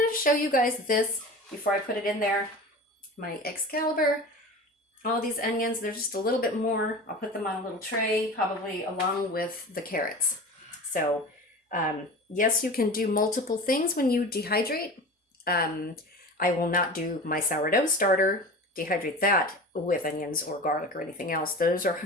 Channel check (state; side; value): normal; both; correlation 0.34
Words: to show you guys this before I put it in there. My Excalibur. All these onions, they're just a little bit more. I'll put them on a little tray, probably along with the carrots. So, yes, you can do multiple things when you dehydrate. I will not do my sourdough starter, dehydrate that with onions or garlic or anything else. Those are